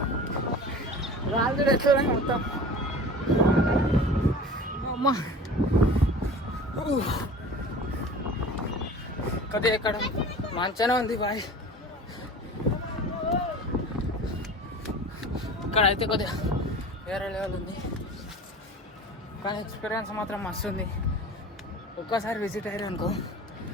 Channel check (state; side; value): normal; both; correlation 0.39